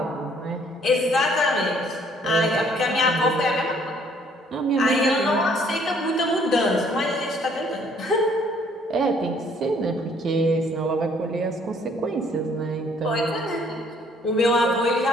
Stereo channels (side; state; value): both; normal; correlation 0.62